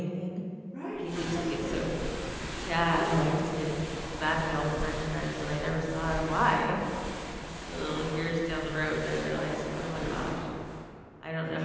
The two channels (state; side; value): identical; both; correlation 1.00